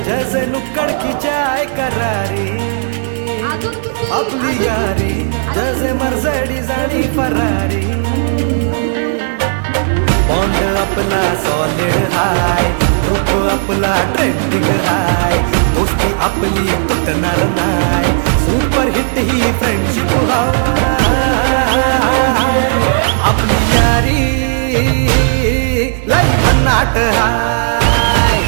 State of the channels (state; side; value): silent; left; digital silence